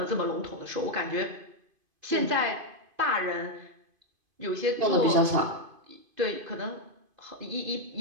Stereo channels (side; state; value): left; late; 2.5 ms